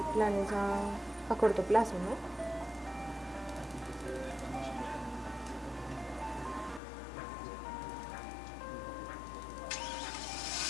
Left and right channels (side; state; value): right; drops out; at 6.8 s